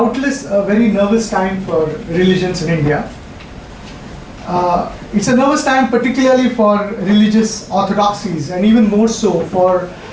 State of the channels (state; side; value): identical; both; correlation 1.00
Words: a very nervous time for religions in India. It's a nervous time particularly for religious orthodoxies, and even more so for